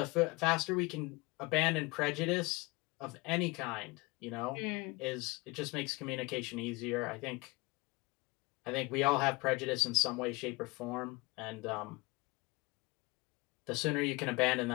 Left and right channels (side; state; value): right; quieter; 24.8 dB